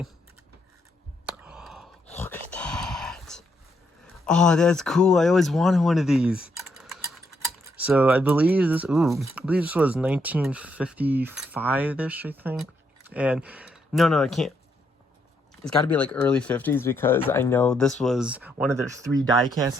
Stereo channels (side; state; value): both; normal; correlation 0.76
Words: Look at that. Oh, that's cool. I always wanted one of these. So I believe this was 1955-ish, I think. And no, I can't. It's got to be like early 50s because I know this was one of their 3 die-cast